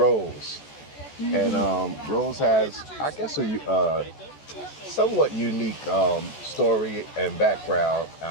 And Rose has, I guess, a somewhat unique story and background.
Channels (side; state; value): right; late; 14 ms